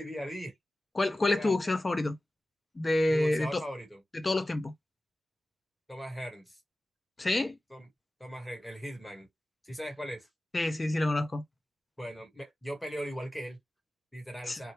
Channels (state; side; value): normal; both; correlation 0.96